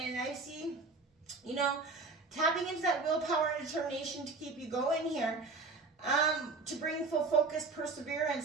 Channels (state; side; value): quieter; left; 3.9 dB